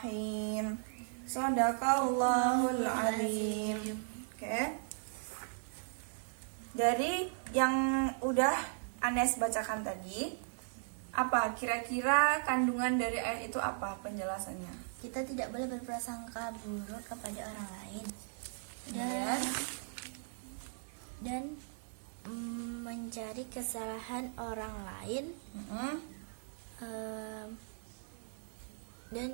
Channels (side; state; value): left; silent; 53 dB below the other